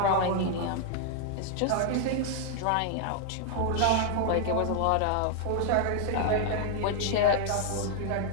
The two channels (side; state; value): both; different; correlation 0.00